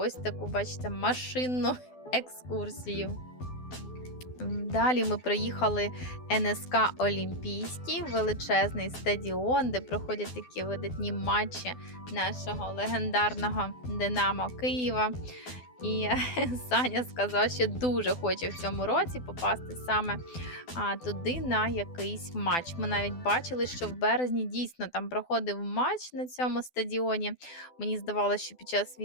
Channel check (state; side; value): late; right; 12 ms